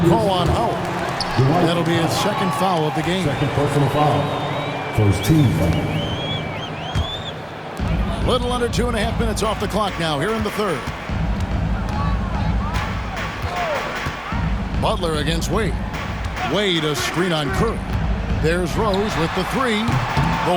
call on Howard. That'll be his second foul of the game. Second personal foul. First team foul. Little under 2.5 minutes off the clock now here in the third. Butler against Wade. Wade a screen on Curry. There's Rose with the three.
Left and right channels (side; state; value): both; identical; correlation 1.00